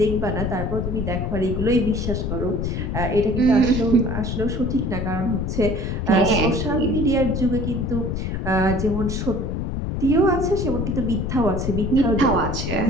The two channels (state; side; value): noise; left; rumble, 2 dB below the sound